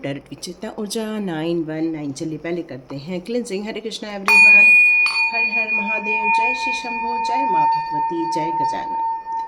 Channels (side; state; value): both; identical; correlation 1.00